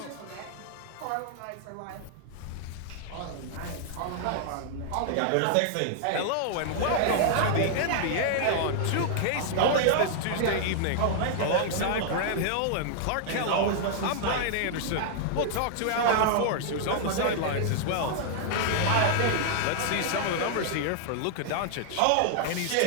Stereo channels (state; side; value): different; both; correlation -0.01